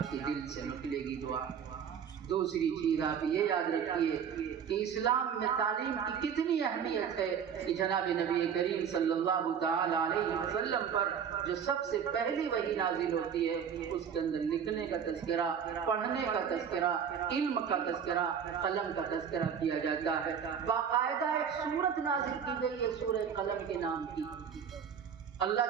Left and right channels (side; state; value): left; quieter; 7.7 dB